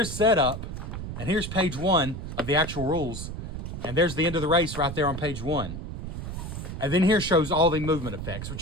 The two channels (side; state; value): right; noise; rumble, 7 dB below the sound